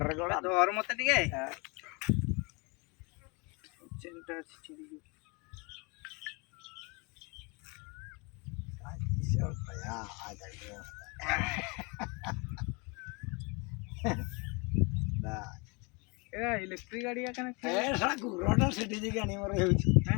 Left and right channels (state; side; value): quieter; right; 30.0 dB